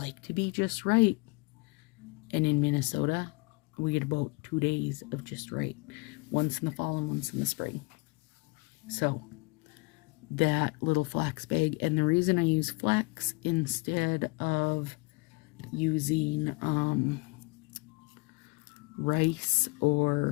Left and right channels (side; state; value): right; quieter; 28.1 dB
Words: to be just right. And in Minnesota, we get about 2 days of just right. Once in the fall and once in the spring. So, that little flax bag. And the reason I use flax instead of using rice